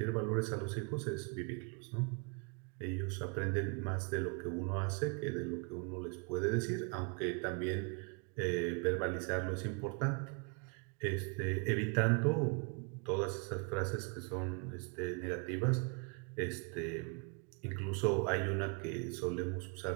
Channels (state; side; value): quieter; left; 35.3 dB